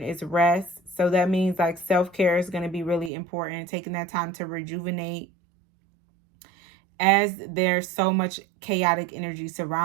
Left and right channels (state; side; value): drops out; left; at 3.1 s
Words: is rest. So that means like self-care is going to be really important. Taking that time to rejuvenate, as there's so much chaotic energy